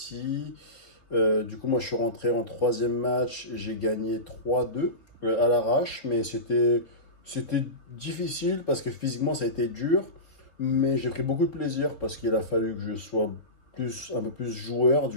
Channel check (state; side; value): late; right; 3.9 ms